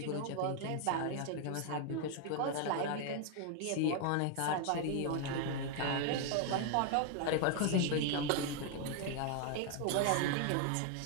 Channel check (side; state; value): both; different; correlation 0.00